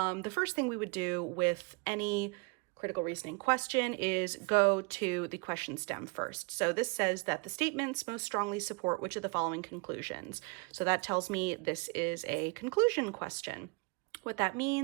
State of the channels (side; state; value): left; quieter; 31.0 dB